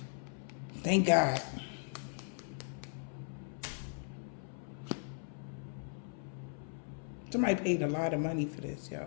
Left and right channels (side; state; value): right; silent; 53 dB below the other